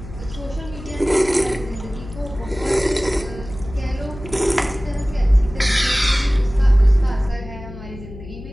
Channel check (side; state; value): left; noise; hum, 14 dB below the sound